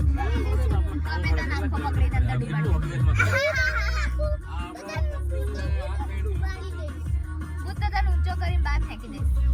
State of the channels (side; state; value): both; identical; correlation 1.00